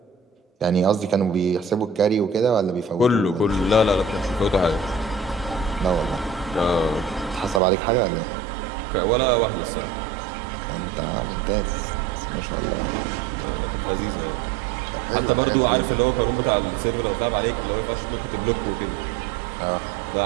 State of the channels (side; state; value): left; drops out; at 7.6 s